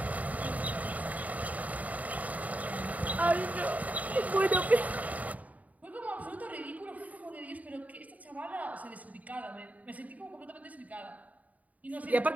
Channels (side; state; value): left; late; 0.072 ms